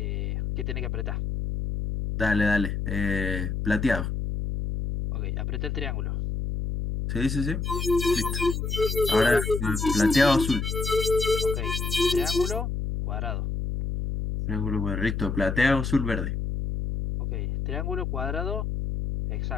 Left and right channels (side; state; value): left; noise; hum, 2 dB below the sound